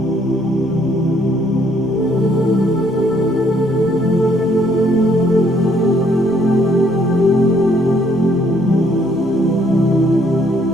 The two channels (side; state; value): both; normal; correlation 0.66